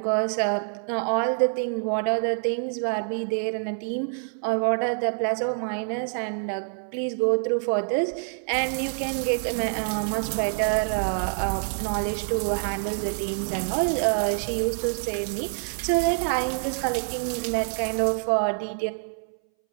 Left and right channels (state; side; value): silent; left; 61 dB below the other